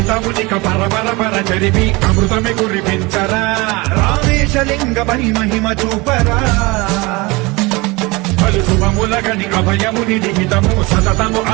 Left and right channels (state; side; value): quieter; left; 24.3 dB